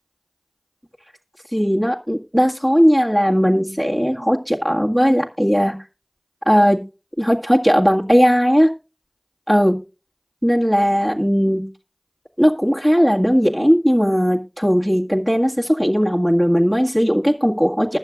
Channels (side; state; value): both; identical; correlation 1.00